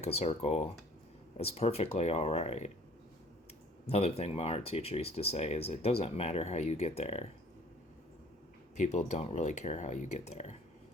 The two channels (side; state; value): both; normal; correlation 0.53